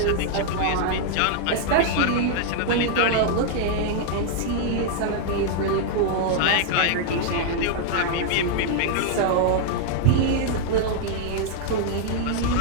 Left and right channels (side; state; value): both; different; correlation 0.00